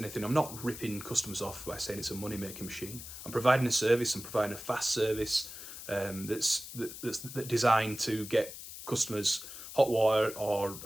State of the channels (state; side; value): noise; left; hiss, 11 dB below the sound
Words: I'm not ripping customers off by saying it's a money-making machine. I'm providing a service. I'm providing a fast service that's designed to get customers hot water